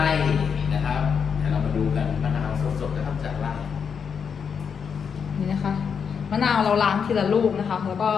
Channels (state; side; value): quieter; right; 6.7 dB